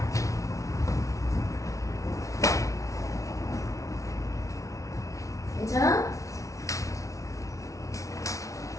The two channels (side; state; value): right; late; 0.16 ms